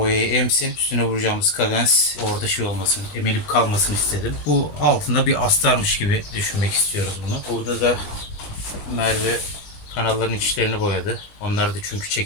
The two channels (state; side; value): late; right; 20 ms